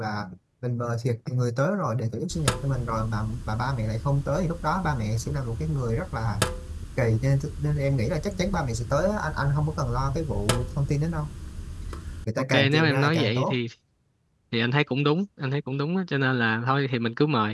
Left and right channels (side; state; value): both; identical; correlation 1.00